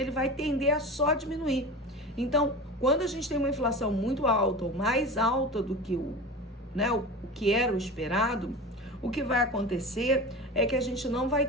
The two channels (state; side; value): normal; both; correlation 0.30